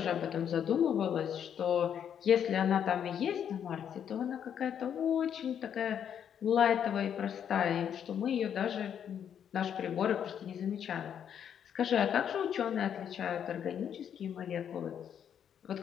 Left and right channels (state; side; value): quieter; right; 8.7 dB